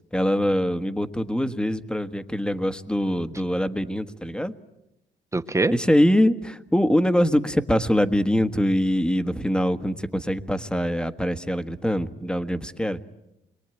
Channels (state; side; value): normal; both; correlation 0.94